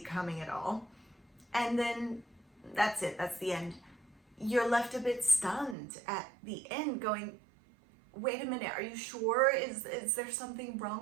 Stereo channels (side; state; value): left; drops out; at 5.8 s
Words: at all. And then that's it, that's the end. You're left a bit stunned at the end going, wait a minute, are you sure? Is there something